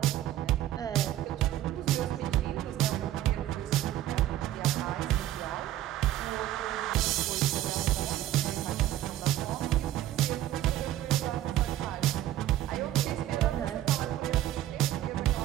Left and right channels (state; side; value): quieter; left; 13.1 dB